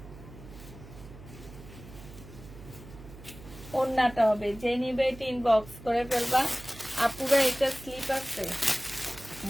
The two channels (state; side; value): noise; right; hum, 17 dB below the sound